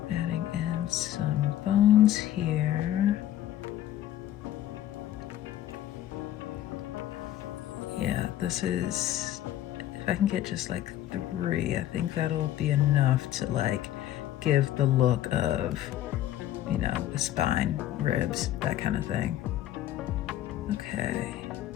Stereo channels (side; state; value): right; quieter; 12.7 dB